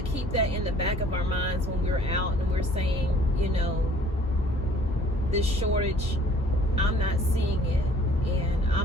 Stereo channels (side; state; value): both; normal; correlation 0.55